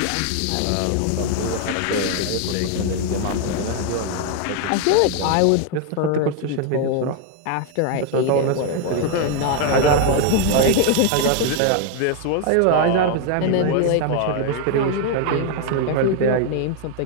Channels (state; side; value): different; both; correlation 0.00